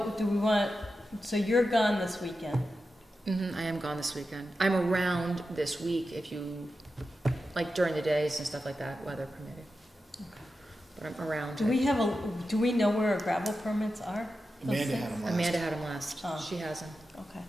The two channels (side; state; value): both; normal; correlation 0.91